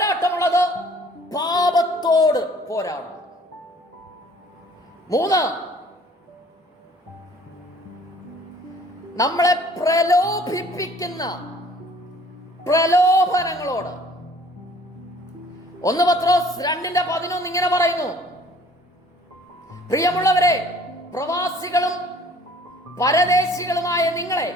പാപത്തോട് പോരാടണം. 3, നമ്മളെ പ്രലോഭിപ്പിക്കുന്ന പ്രലോഭനങ്ങളോട്. 1 പത്രോസ് 2:11 ഇങ്ങനെ പറയുന്നു: പ്രിയമുള്ളവരെ, പ്രവാസികളും പരദേശികളുമായ നിങ്ങളെ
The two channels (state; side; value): normal; both; correlation 0.54